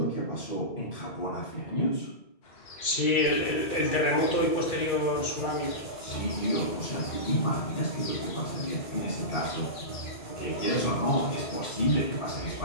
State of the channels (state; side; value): late; right; 2.4 ms